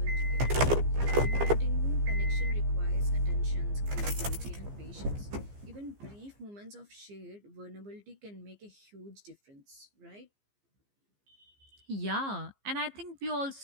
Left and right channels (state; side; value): late; left; 15 ms